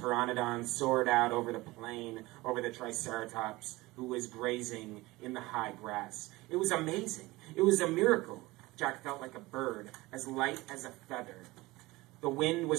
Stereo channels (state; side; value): quieter; left; 20.6 dB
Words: soared out over the plain, over the Triceratops, who was grazing in the high grass. It was amazing. It was a miracle. Jack felt like a bird, as light as a feather. The wind